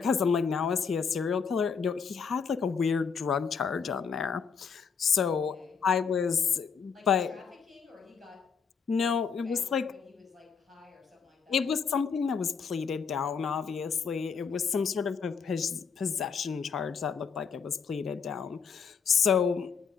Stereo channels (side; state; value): right; quieter; 6.1 dB